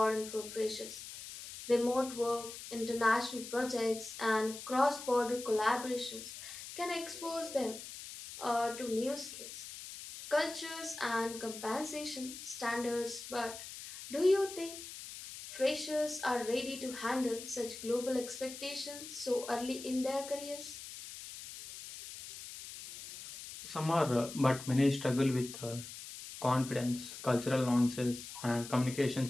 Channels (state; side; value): noise; left; hiss, 11 dB below the sound